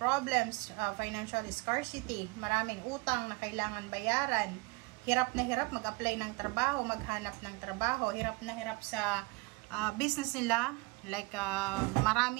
financial scarcity, maraming utang na kailangan bayaran, hirap na hirap mag-apply ng trabaho, maghanap ng trabaho, hirap na hirap sa business nila, like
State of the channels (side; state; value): left; quieter; 26.5 dB